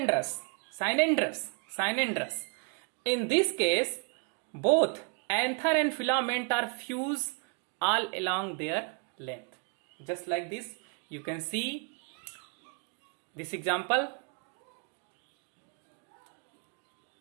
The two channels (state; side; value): quieter; left; 36.8 dB